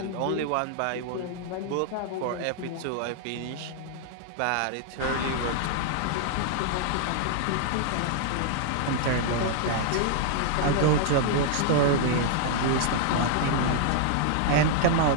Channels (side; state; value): both; different; correlation -0.01